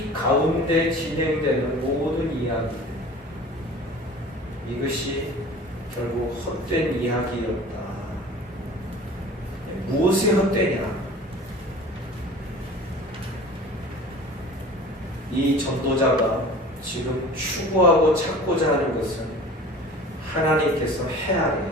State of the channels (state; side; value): normal; both; correlation 0.42